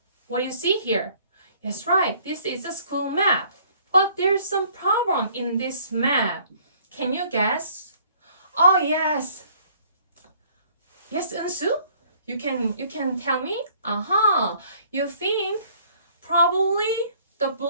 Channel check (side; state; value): both; inverted; correlation -0.59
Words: What do you see here? Yes, right, this is a school map, but there's some problem in this map. Can you guess? Oh, yes, Eunsu, you can tell me. You think probably the